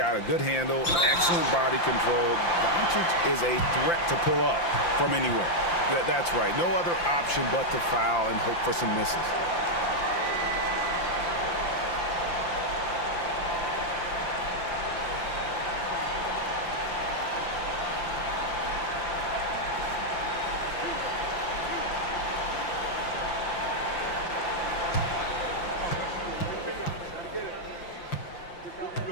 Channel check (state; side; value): late; right; 5.8 ms